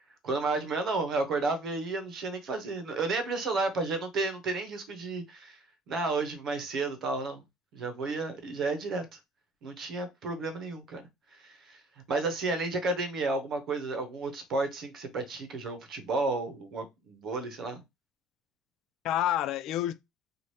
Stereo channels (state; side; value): normal; both; correlation 0.50